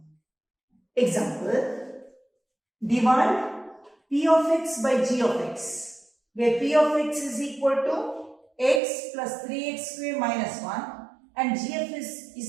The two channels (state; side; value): drops out; left; at 8.8 s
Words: Example, divide p of x by g of x, where p of x is equal to x plus 3x square minus 1 and g of x